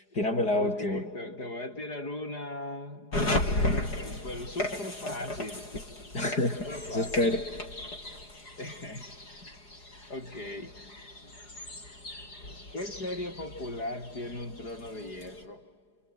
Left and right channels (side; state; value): right; late; 4.9 ms